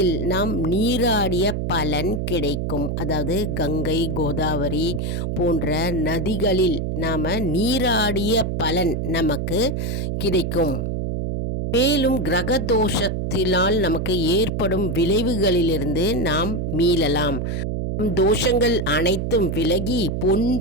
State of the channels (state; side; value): noise; right; hum, 1 dB below the sound